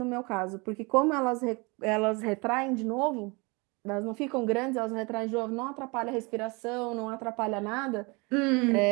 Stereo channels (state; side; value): quieter; left; 28.0 dB